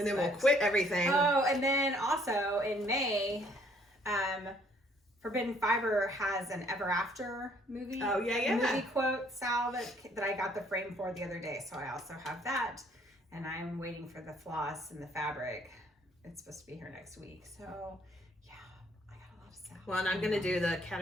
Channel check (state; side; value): normal; both; correlation 0.63